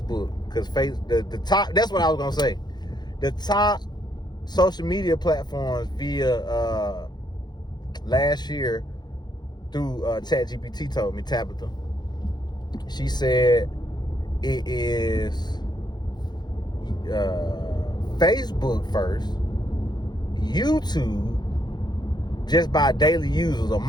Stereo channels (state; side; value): late; right; 0.21 ms